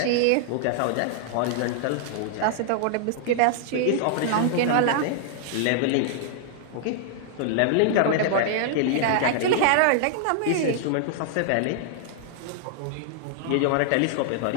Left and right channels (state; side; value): different; both; correlation -0.01